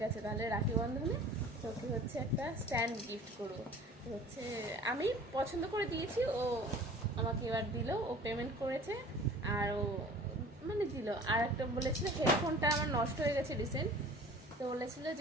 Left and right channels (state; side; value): normal; both; correlation 0.45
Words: আছে তাহলে রাখি বন্ধনে তোকে একটা স্ট্যান্ড গিফট করবো। তো আমি পছন্দ করে দিয়েছি, ও আমাকে এবার দিল, ও পেমেন্ট করেছে। আর ও মানে দিল। আর একটা বলেছিল হেডফোনটা আমার নষ্ট হয়ে গেছে রিসেন্ট, তো বলেছিল